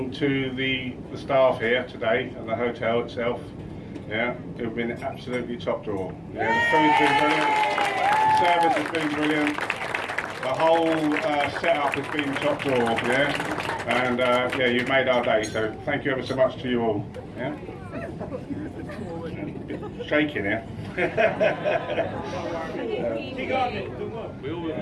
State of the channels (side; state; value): both; identical; correlation 1.00